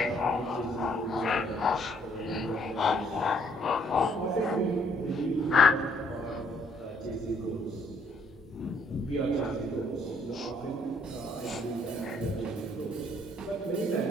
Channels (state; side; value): normal; both; correlation 0.66